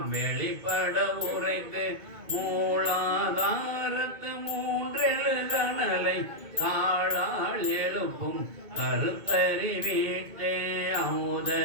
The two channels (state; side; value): late; left; 2.2 ms